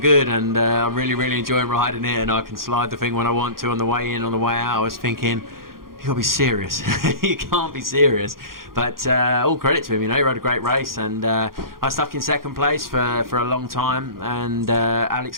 and I'm really, really enjoying riding it, and I can slide the thing when I want to on the way in, on the way out." I was thinking, you gotta be serious. You can't be serious. But all credit to him, you know, he rode a great race, and I stuck in second place for a long time, and Alex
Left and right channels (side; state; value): left; late; 0.92 ms